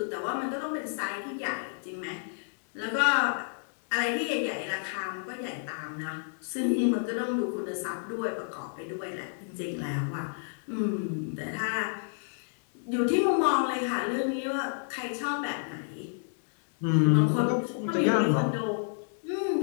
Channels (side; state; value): right; silent; digital silence